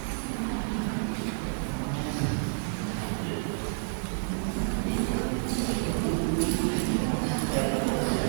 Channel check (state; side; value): silent; left; digital silence